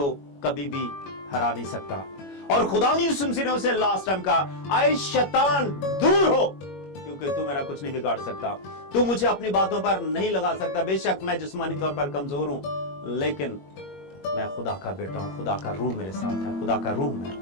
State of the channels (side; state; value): right; late; 21 ms